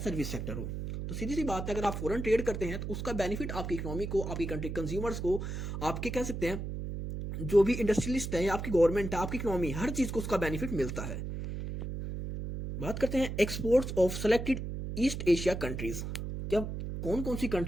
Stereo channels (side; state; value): right; noise; hum, 5 dB below the sound